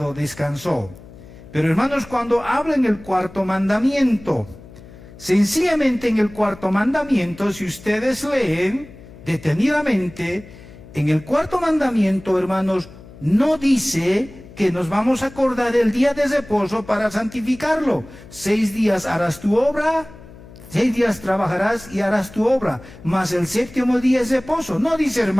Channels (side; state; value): left; noise; hum, 19 dB below the sound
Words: descansó. Pero, hermanos, cuando habla en el cuarto mandamiento, sencillamente en el cuarto mandamiento, si ustedes leen detenidamente, en el cuarto mandamiento, hermanos, no dice que nos vamos a acordar del día de reposo para santificarlo. 6 días harás tu obra, 6 días trabajarás y harás tu obra, mas el séptimo día es reposo. No dice,